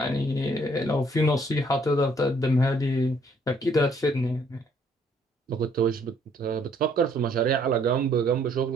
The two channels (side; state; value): both; normal; correlation 0.64